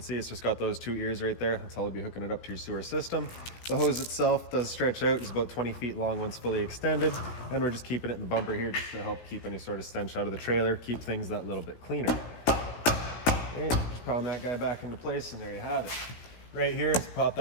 see, it's just got those two ears right there. That's how we'll be hooking it up to your sewer system. The hose itself does stretch out. It's about 20 feet long once fully extended. And we're just keeping it in the bumper here just to help keep any sort of stench out of the trailer, keep things that little bit cleaner. Right, just pound that guy back into place, and there you have it. Right here, to pop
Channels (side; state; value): right; late; 17 ms